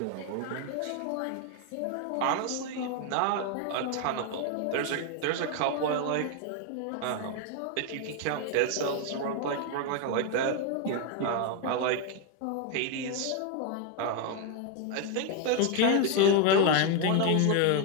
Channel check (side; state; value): both; different; correlation 0.01